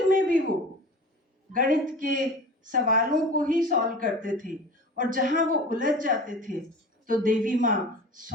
में भी वो गणित के सवालों को ही सॉल्व करते थे, और जहां वो उलझ जाते थे तो देवी माँ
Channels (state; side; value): normal; both; correlation 0.37